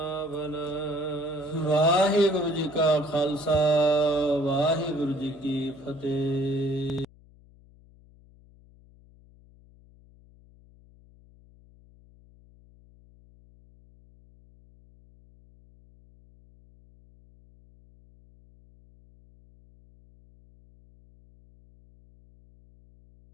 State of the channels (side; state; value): left; noise; hum, 26 dB below the sound